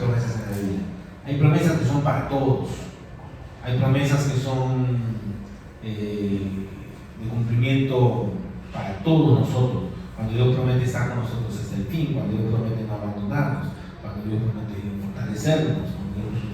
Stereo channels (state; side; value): identical; both; correlation 1.00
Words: en la Biblia. Hay promesas que son para todos. Hay promesas que son de cumplimiento para todos nosotros. Cuando Dios promete estar con nosotros hasta el fin, cuando Dios promete no abandonarnos, cuando Dios promete fortalecernos, cuando Dios